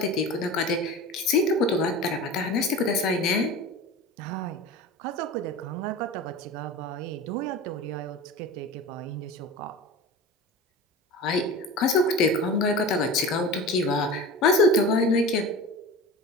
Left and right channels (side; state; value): both; normal; correlation 0.33